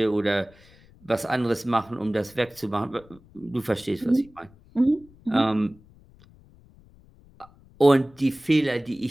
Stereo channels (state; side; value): noise; left; rumble, 26 dB below the sound